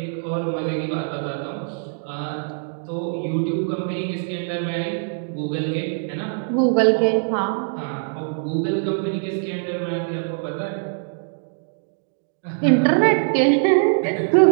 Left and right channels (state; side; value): silent; left; digital silence